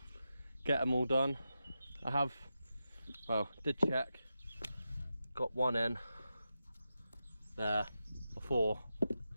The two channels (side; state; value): both; inverted; correlation -0.90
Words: get them all done. I have, well, did check, got one in there before